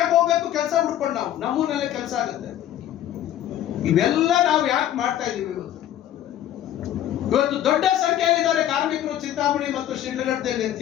ಹೋಗ್ಬೇಕು ಕೆಲಸ ಹುಡ್ಕೊಂಡು? ನಾವು ನಮ್ಮೂರಲ್ಲೇ ಕೆಲಸ ಆಗುತ್ತೆ. ಇವೆಲ್ಲ ನಾವು ಯಾಕೆ ಮಾಡ್ತಾ ಇದೀವಿ? ಇವತ್ತು ದೊಡ್ಡ ಸಂಖ್ಯೆಯಲ್ಲಿದ್ದಾರೆ ಕಾರ್ಮಿಕರು ಚಿಂತಾಮಣಿ ಮತ್ತು ಶಿಡ್ಲಘಟ್ಟದಲ್ಲಿ ಅಂತ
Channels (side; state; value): right; quieter; 11.7 dB